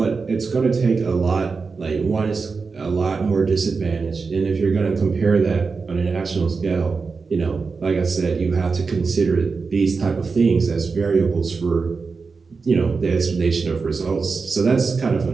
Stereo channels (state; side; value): quieter; left; 4.7 dB